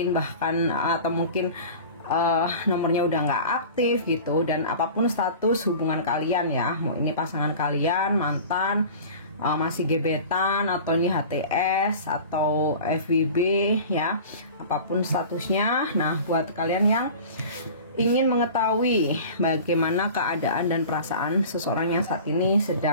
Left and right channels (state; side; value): inverted; both; correlation -0.39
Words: nomornya udah nggak aktif gitu. Dan apapun status hubungan kalian ya, mau ini pasangan kalian, mantan, masih gebetan, atau ini HTS atau FWB ya, apapun statusnya. Nah, buat kalian yang ingin mengetahui bagaimana keadaan dan perasaan seseorang yang saat ini